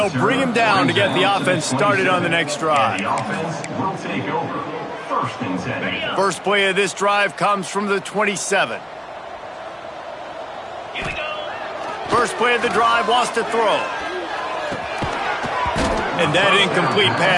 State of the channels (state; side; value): identical; both; correlation 1.00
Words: bring him down to get the offense started on the next drive. First play of this drive comes from the 27. First play of the drive wants to throw. And that incomplete